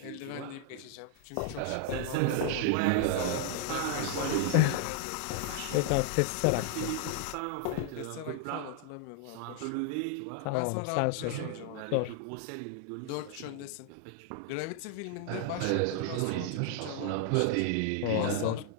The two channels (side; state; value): both; different; correlation 0.00